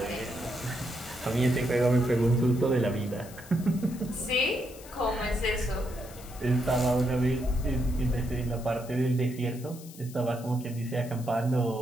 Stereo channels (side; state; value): left; noise; hiss, 18 dB below the sound